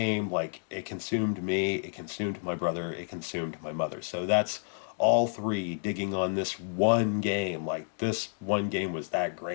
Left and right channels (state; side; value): silent; right; digital silence